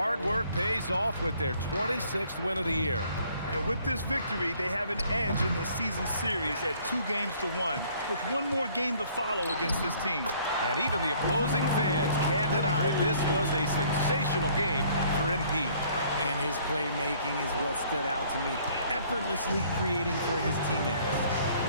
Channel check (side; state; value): both; inverted; correlation -0.59